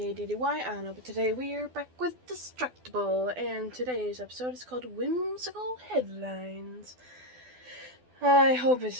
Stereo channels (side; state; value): left; late; 12 ms